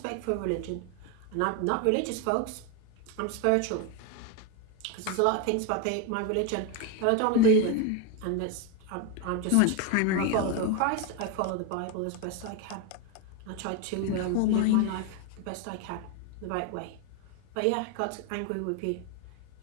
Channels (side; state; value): both; different; correlation 0.02